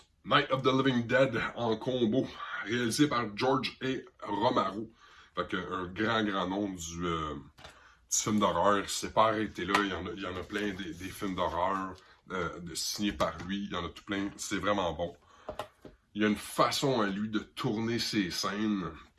Night of the Living Dead en combo, réalisé par George A. Romero. Un grand nom du film d'horreur. Il s'est pas arrêté là, il y en a plein des films d'horreur signés par lui, il y en a tout plein, c'est vraiment bon. Il y a une façon à lui de tourner ses scènes,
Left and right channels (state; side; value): identical; both; correlation 1.00